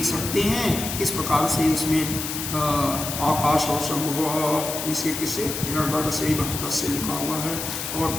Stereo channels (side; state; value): left; noise; hiss, 5 dB below the sound